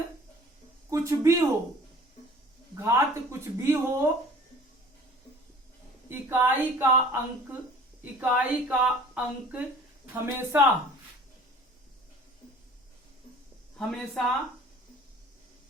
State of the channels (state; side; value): normal; both; correlation 0.48